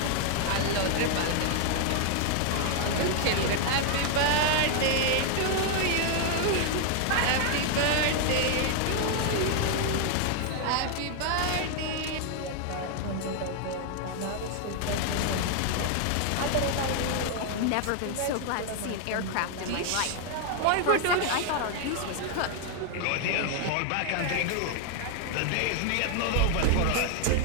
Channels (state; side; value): different; both; correlation 0.00